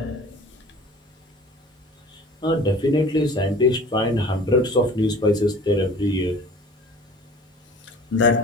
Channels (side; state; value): both; normal; correlation 0.45